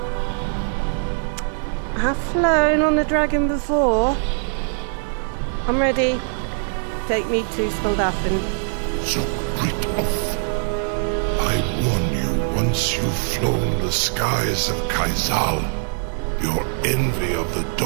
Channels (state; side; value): silent; left; 61 dB below the other